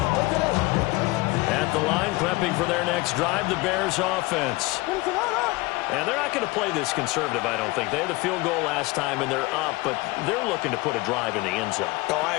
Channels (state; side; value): quieter; right; 22.2 dB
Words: At the line, prepping for their next drive, the Bears offense. And they're not going to play this conservative, I don't think. They had the field goal last time, and they're up, but they're looking to put a drive in the end zone. Oh, I